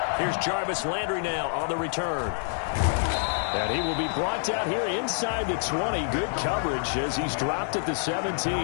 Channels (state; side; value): silent; right; digital silence